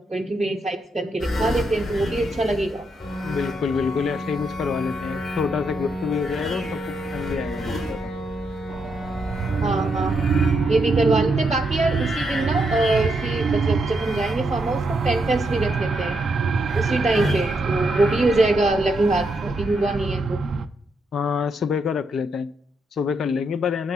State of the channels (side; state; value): both; normal; correlation 0.79